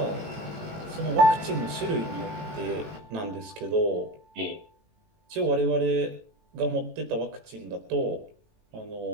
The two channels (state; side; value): late; left; 18 ms